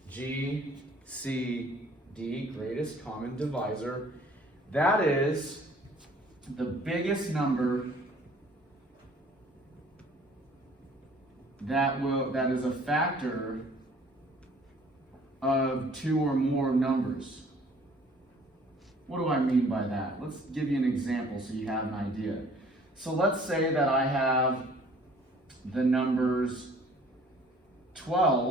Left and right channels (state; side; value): normal; both; correlation 0.54